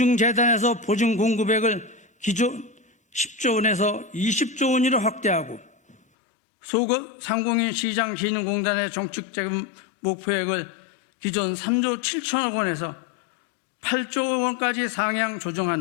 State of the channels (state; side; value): drops out; right; at 6.0 s